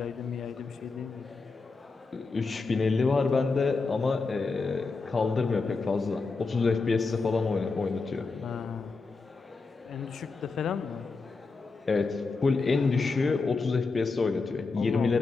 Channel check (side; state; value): right; quieter; 4.1 dB